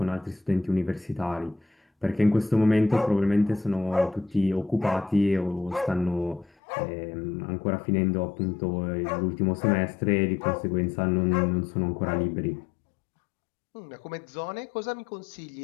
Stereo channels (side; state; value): right; drops out; at 6.5 s